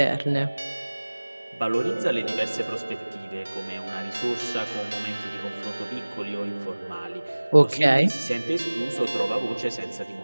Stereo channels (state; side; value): inverted; both; correlation -1.00